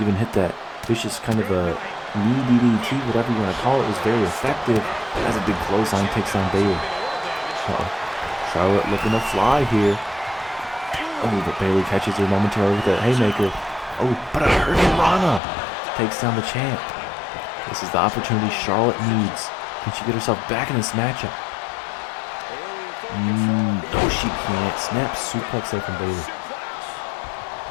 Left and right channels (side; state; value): right; drops out; at 15.4 s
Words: hit that vicious kind of a knee DDT, whatever you want to call it, was very effective. As a big clothesline takes down Bayley. Charlotte looking to fly here. Oh, but Bayley catches her momentarily with that haymaker. Oh, but a Hurricane Rana takes down the champ. This is the opportunity Charlotte needs. Can she get herself back in this matchup? No, she can't. Snap suplex there from Bayley.